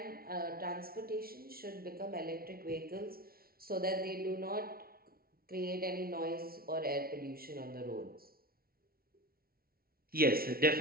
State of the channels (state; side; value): late; left; 0.44 ms